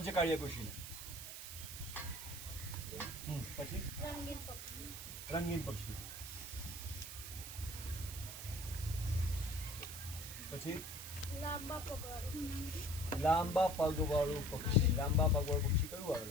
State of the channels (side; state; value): right; noise; hiss, 9 dB below the sound